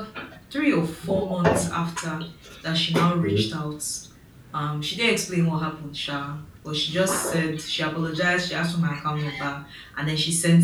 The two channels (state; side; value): identical; both; correlation 1.00